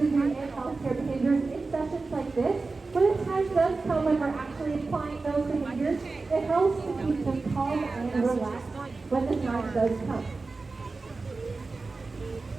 and healthcare behaviors in sessions like this, when the time does come when we're actually applying those behaviors, it helps to keep them calm and relaxed when the time does come.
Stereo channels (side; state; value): left; quieter; 3.8 dB